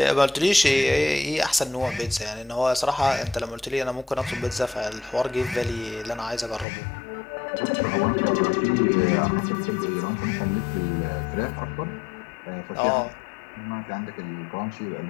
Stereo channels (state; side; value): drops out; right; at 6.7 s